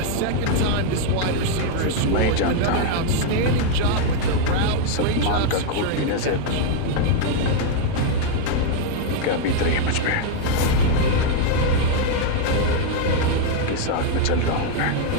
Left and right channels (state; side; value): different; both; correlation 0.00